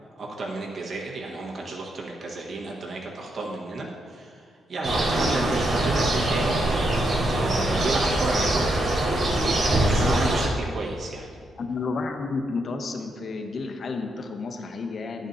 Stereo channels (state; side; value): normal; both; correlation 0.80